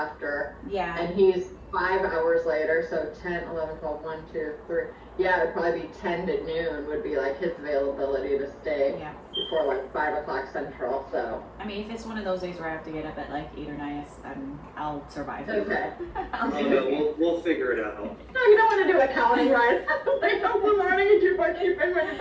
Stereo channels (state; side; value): identical; both; correlation 1.00